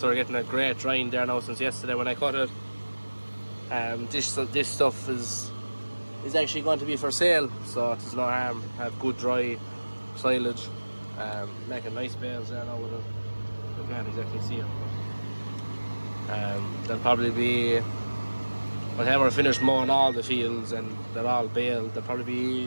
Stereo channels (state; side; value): inverted; both; correlation -1.00